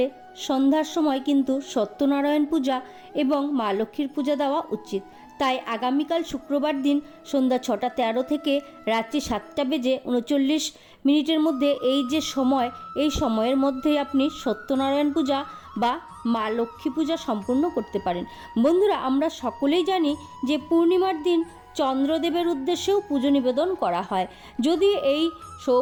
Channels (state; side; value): identical; both; correlation 1.00